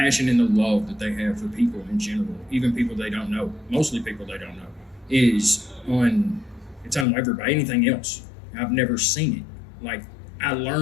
and the love that they have for people in general, even people they don't know, mostly people they don't know, it's unwavering by anything else. I've never seen it. Like, I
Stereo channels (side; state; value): right; drops out; at 7.1 s